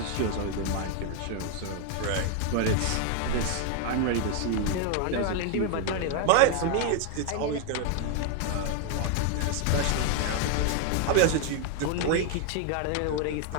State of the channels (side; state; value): both; different; correlation 0.00